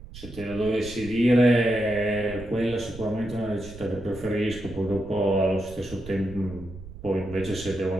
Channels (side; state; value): right; noise; rumble, 15 dB below the sound